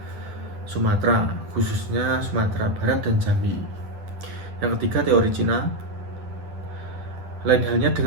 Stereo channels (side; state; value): left; late; 10 ms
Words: Sumatera, khususnya Sumatera Barat dan Jambi. Yang ketiga, teori Cina. Lain halnya